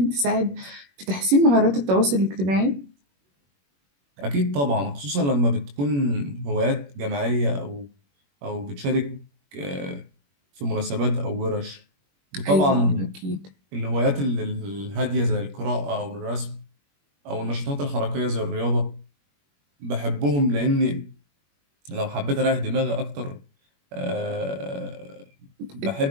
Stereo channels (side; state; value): left; late; 21 ms